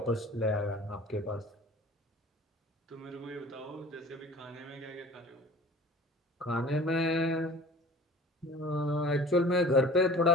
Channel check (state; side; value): normal; both; correlation 0.44